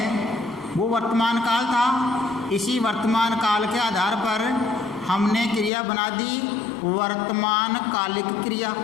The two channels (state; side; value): drops out; right; at 5.7 s